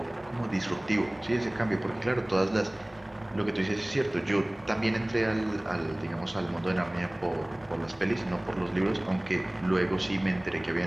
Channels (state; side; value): noise; right; rumble, 30 dB below the sound